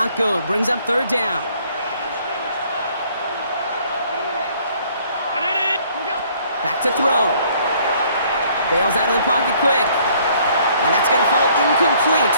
good. Brings up 3rd down. Back to throw. Bails out of the pocket quick. And that's going to fall incomplete.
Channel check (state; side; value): inverted; both; correlation -0.61